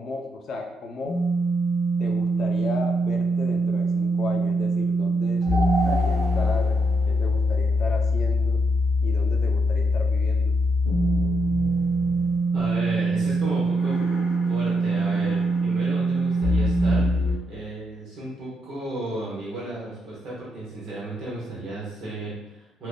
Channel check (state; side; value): normal; both; correlation 0.80